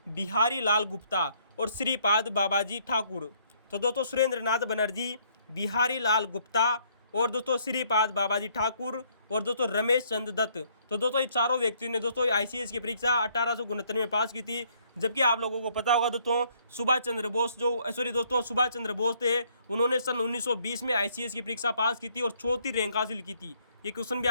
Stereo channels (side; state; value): both; inverted; correlation -0.66